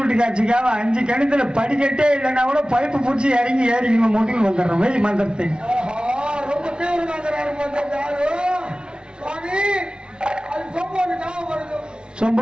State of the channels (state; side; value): late; left; 0.055 ms